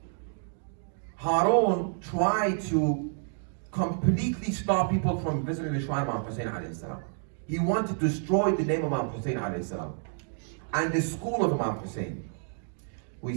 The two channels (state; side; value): silent; left; 58 dB below the other